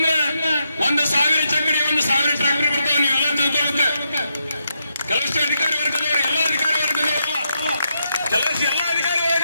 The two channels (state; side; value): inverted; both; correlation -0.81